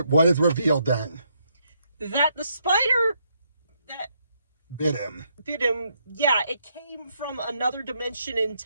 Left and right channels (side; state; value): both; inverted; correlation -0.75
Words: what is revealed then? That the spider that bit him, yeah, it came from another dimension